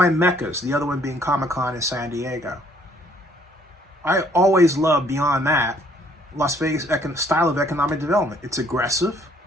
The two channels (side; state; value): both; normal; correlation 0.63